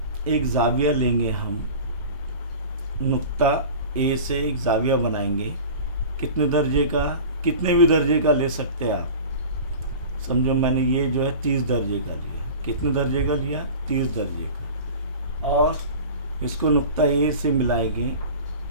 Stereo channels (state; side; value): inverted; both; correlation -0.37